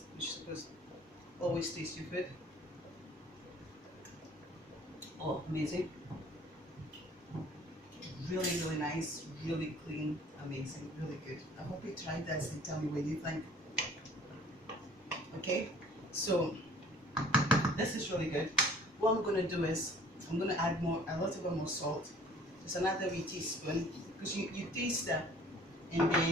You're supposed to always taste your food. Oh, amazing! Really, really nice, really clean, amazing, really good. I hope you tried this and tell me what you think. Okay, so this is really good. What I'm gonna do is I'm gonna add a little bit more salt. Just another wee teaspoon, because you taste that, and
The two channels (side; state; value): both; normal; correlation 0.52